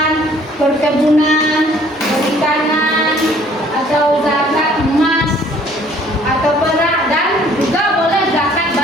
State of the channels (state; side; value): normal; both; correlation 0.58